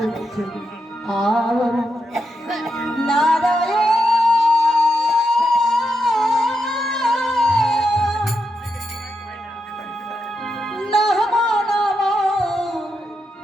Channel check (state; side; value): normal; both; correlation 0.85